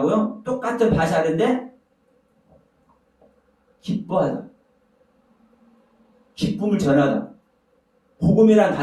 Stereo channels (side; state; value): both; identical; correlation 1.00